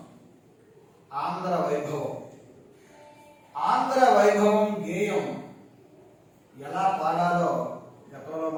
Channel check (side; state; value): both; identical; correlation 1.00